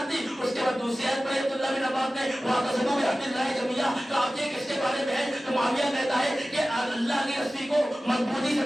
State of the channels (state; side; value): normal; both; correlation 0.96